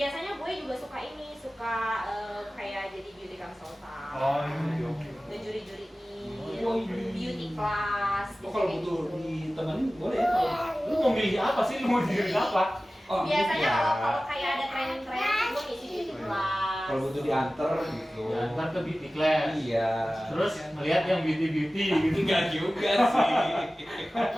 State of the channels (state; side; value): normal; both; correlation 0.96